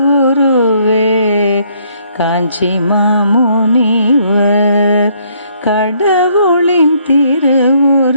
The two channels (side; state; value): both; inverted; correlation -0.67